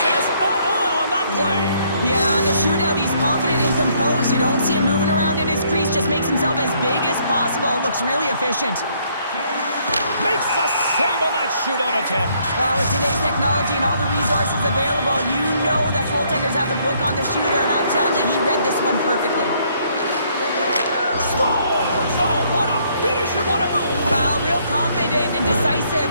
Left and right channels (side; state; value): both; inverted; correlation -0.67